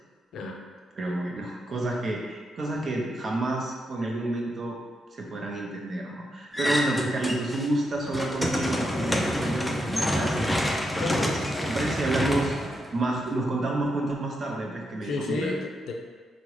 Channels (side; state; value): both; normal; correlation 0.83